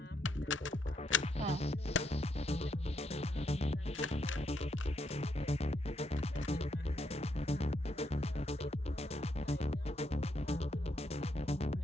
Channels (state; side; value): normal; both; correlation 0.76